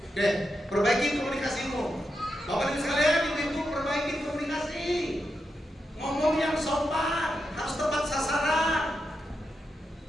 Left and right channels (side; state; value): both; normal; correlation 0.86